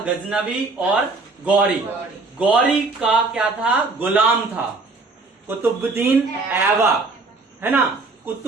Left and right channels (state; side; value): quieter; left; 3.7 dB